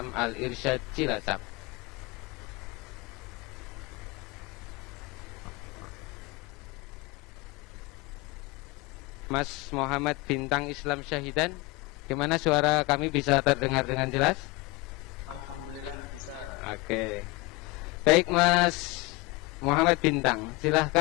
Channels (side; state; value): right; quieter; 23.3 dB